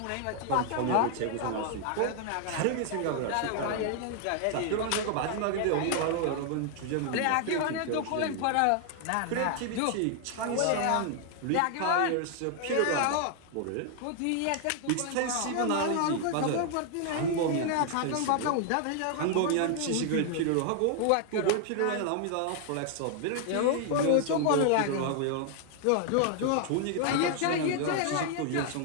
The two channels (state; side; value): different; both; correlation 0.00